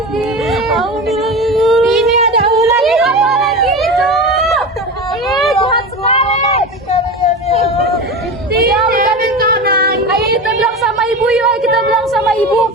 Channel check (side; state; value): both; normal; correlation 0.26